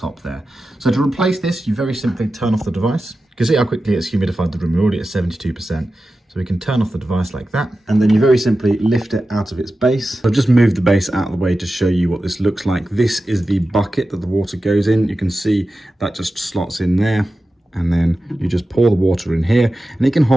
there. So to replace this, you very simply turn off the device. You can see how quickly it's humidified the room. We're already at 72%. So we can turn off the device like that, and then you very simply lift it out of its base. I've just moved the base out of the way to show you what this looks like. This is the bucket that the water goes in. You can see that just slots in there, and then you just pour the water in here, and it can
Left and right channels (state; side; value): normal; both; correlation 0.93